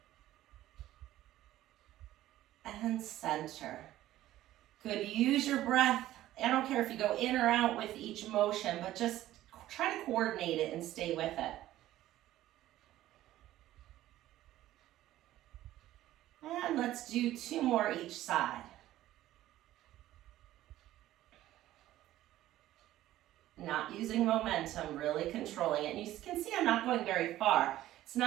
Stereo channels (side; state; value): left; quieter; 14.4 dB